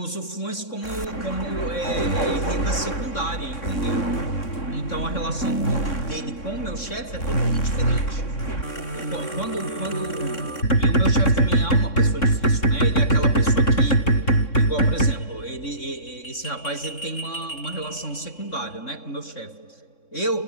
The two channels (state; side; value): late; right; 3.6 ms